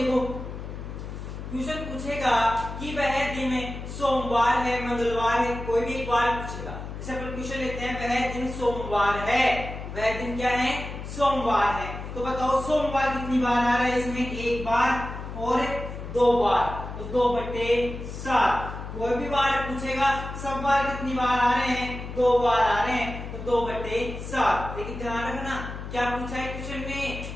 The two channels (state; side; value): noise; left; hum, 9 dB below the sound